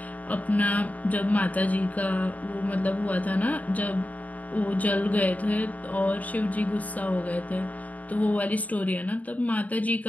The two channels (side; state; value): right; late; 0.073 ms